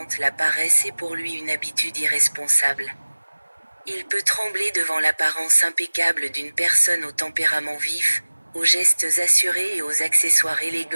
La paresse est pour lui une habitude irresponsable. Il peut trembler devant l'apparence impeccable d'une personne au tempérament vif, aux gestes assurés et aux accessoires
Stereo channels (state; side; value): inverted; both; correlation -1.00